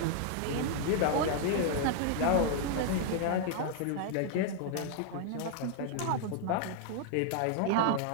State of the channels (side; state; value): both; different; correlation 0.00